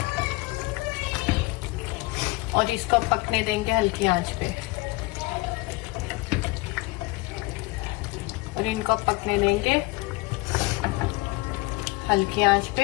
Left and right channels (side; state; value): right; quieter; 22.7 dB